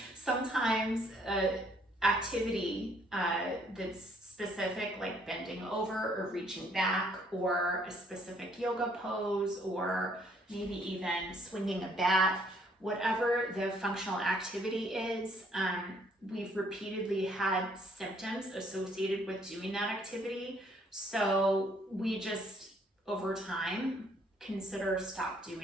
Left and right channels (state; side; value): normal; both; correlation 0.65